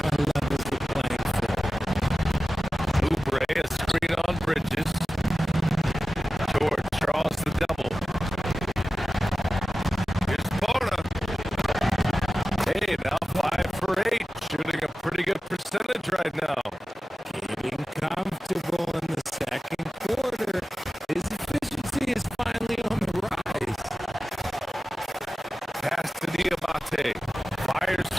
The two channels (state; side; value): normal; both; correlation 0.95